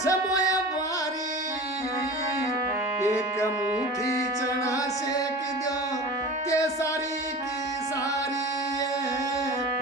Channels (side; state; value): both; normal; correlation 0.35